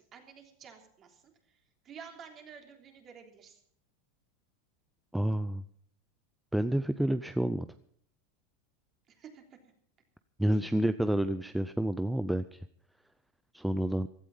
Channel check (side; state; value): both; normal; correlation 0.96